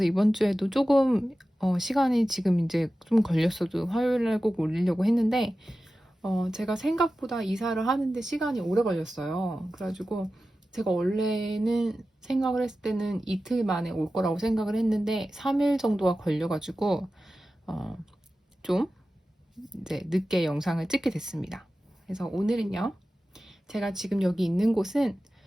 이번 주에도 조금 시간이 지금 이제 좀 걸렸어도 화요일 날 꼭 올리려고 했는데 제가 생각보다 이사를 하는데 시간이 오래 걸렸어요. 그래가지고 제가 원래는 생각을 했을 때는 이틀 만에 올 거라고 생각을 했는데 3일 정도가 걸려가지고 어, 좀 이제 늦게 영상을 찍게 됐습니다. 그래서 오늘은요, 제가 지금 여기 있는 곳은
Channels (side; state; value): both; normal; correlation 0.94